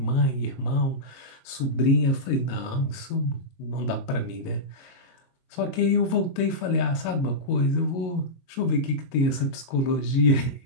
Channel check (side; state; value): right; late; 22 ms